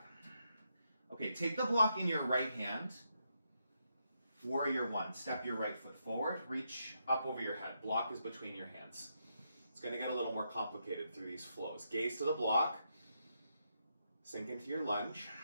Okay, take the block in your right hand. Warrior one. Step your right foot forward. Reach up over your head. Block is between your hands. It's going to get a little more complicated through these flows. Gaze to the block. Sink into your lunge.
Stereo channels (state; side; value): inverted; both; correlation -0.81